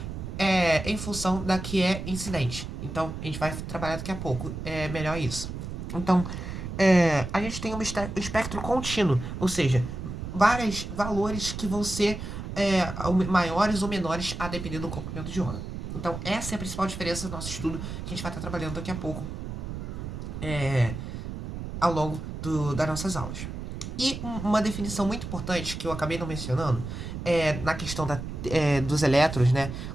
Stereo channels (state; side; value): noise; right; rumble, 7 dB below the sound